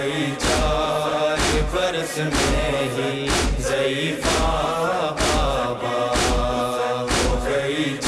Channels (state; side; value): identical; both; correlation 1.00